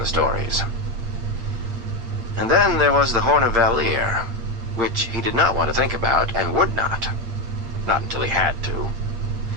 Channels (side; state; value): left; late; 8.4 ms